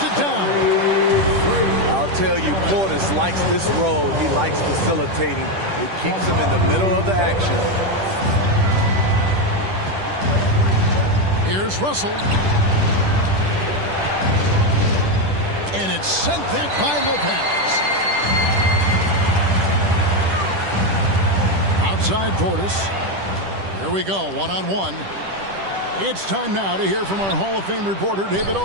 it down. I'll tell you, Portis likes this role. He likes facilitating. It keeps him in the middle of the action. Here's Russell. And it's sent back by Lopez. Outside Portis. Here we go, one-on-one. It's time now to hear from our Hall of Fame reporter, David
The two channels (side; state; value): left; late; 10 ms